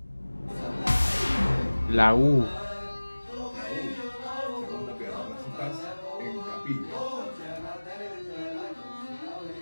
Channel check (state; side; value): inverted; both; correlation -1.00